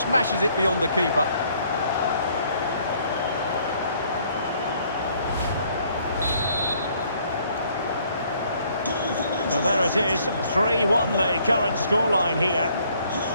smashes it beyond the keeper. So there it is, 3-1 the current scoreline here.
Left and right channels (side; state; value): both; inverted; correlation -0.64